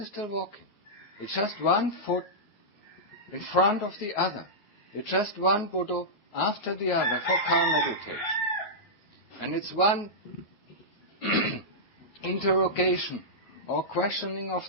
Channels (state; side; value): late; right; 9.5 ms